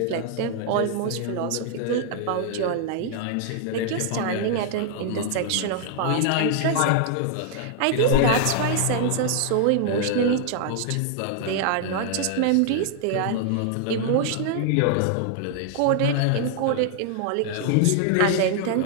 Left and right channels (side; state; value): both; different; correlation 0.00